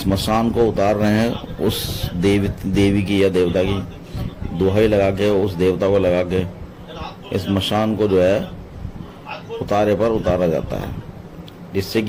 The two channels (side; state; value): both; identical; correlation 1.00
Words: मशान को उतार रहे हैं, उस देवी की या देवता की दुहाई लगा के, उस देवता को लगा के इस मशान को जो है उतारे पर उतारा जाता है, जिससे